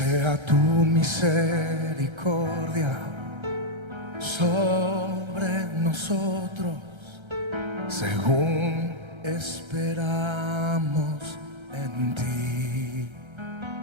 tu misericordia sobre nosotros, según esperamos en ti.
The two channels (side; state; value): left; late; 1.3 ms